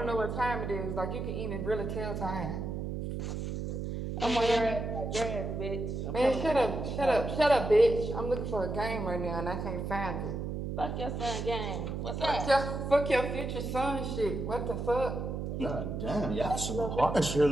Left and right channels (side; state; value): right; noise; hum, 4 dB below the sound